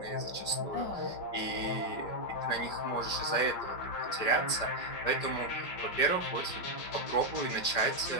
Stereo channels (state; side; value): late; right; 5.1 ms